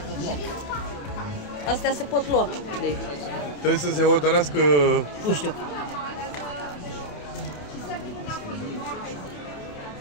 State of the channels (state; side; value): late; right; 27 ms